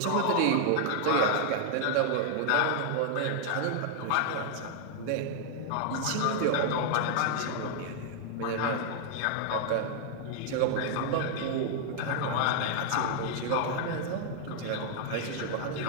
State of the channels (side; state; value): both; different; correlation 0.00